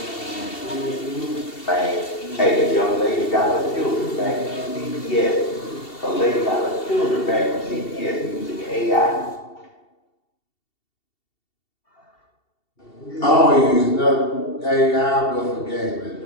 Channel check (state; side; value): late; right; 2.7 ms